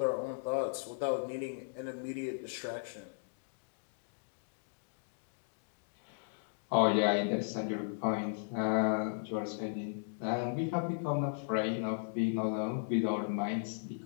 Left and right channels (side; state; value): right; silent; digital silence